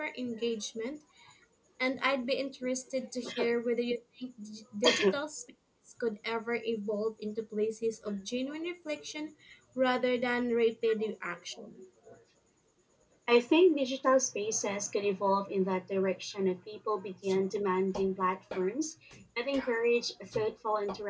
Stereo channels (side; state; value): both; identical; correlation 1.00